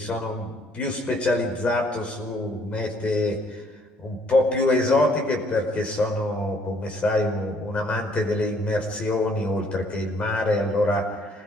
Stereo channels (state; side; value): normal; both; correlation 0.64